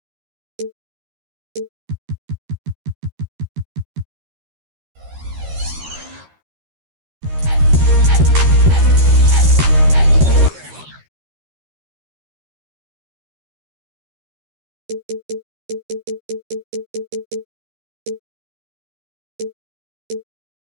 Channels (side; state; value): left; late; 13 ms